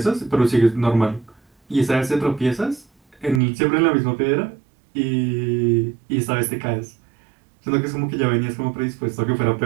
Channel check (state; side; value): drops out; left; at 3.4 s